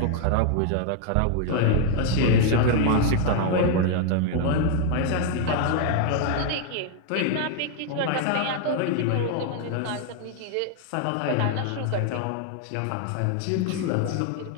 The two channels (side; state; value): both; different; correlation 0.00